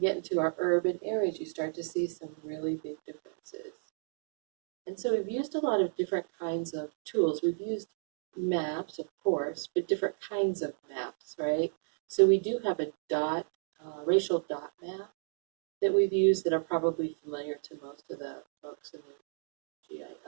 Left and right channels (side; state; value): left; silent; digital silence